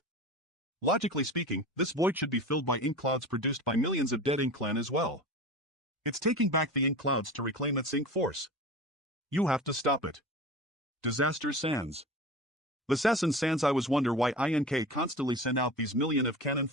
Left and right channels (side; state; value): both; normal; correlation 0.33